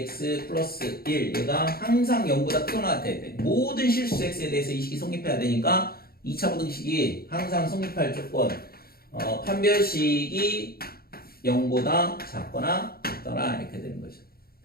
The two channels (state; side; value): late; right; 0.44 ms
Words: 플러스 1 얘가 항상 0보다 크거나 같아야 돼. 모든 실수 x에 대해서 이 식이 성립해야 되니까 2차 부등식이 항상 성립할 조건 판별식이 0보다 작거나 같더라 이렇게 되는 거죠.